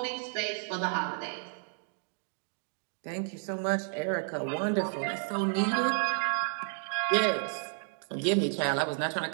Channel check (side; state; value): left; silent; 57 dB below the other